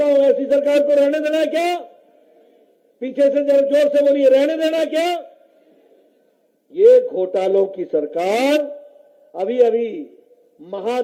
हूं, ऐसी सरकार को रहने देना है क्या? पीछे से जरा जोर से बोलिए, रहने देना है क्या? ये घोटालों की सरकार। अभी अभी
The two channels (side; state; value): both; identical; correlation 1.00